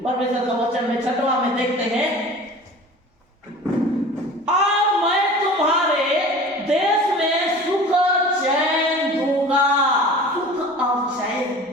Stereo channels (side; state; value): both; normal; correlation 0.40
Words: परमेश्वर का वचन में 6वां में देखते हैं, और मैं तुम्हारे देश में सुख चैन दूंगा। सुख और चैन।